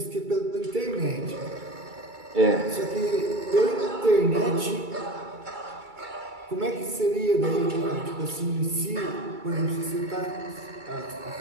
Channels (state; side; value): late; left; 2.3 ms